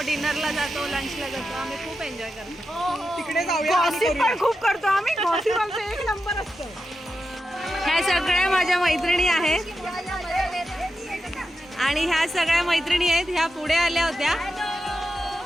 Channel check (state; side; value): normal; both; correlation 0.89